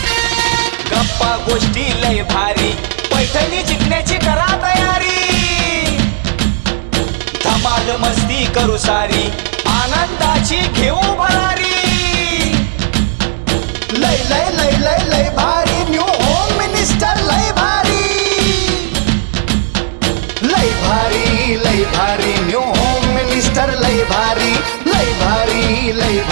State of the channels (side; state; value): left; silent; digital silence